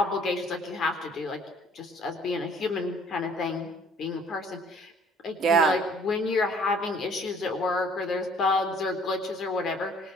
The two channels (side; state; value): both; normal; correlation 0.56